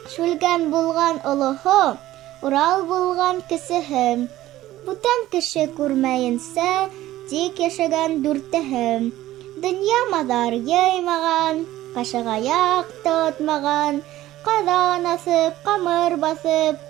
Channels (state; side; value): quieter; left; 15.1 dB